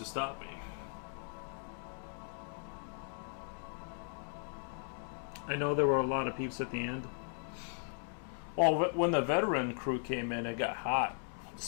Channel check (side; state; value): right; silent; 53 dB below the other